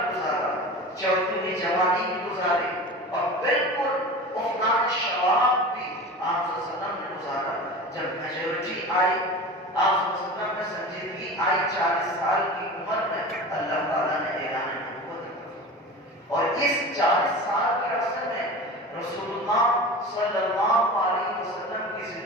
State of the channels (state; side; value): normal; both; correlation 0.33